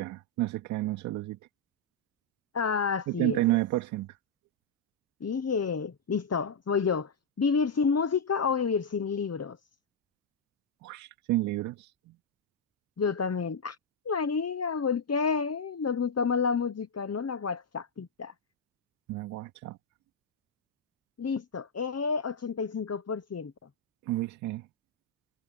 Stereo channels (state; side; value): normal; both; correlation -0.03